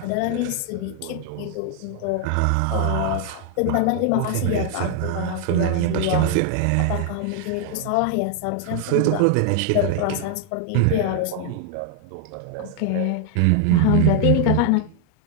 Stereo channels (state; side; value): different; both; correlation 0.00